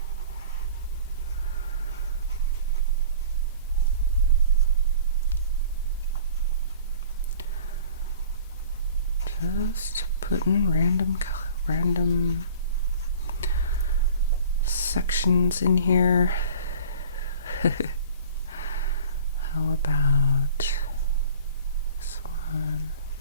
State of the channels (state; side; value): inverted; both; correlation -0.46